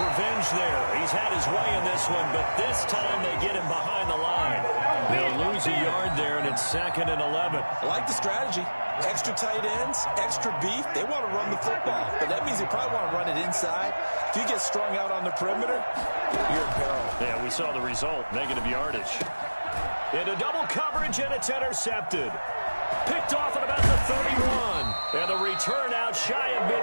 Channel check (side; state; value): both; inverted; correlation -1.00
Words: there. He's had his way in this one, but this time they get him behind the line. They'll lose a yard there, and it's second and 11. I like the strategy. Extra tight ends, extra beef. They want to run the football, but that means they probably want to run it inside. If you get strung out on the perimeter, you're in peril. Yeah, we saw the result. Negative yardage. Into double coverage, and it's intercepted. Picked off at about the 31. And the return out shy of